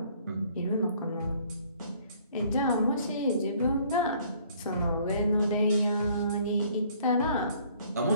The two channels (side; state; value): both; inverted; correlation -0.59